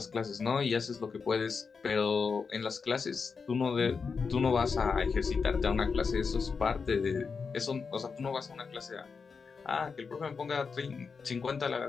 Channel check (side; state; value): right; quieter; 5.3 dB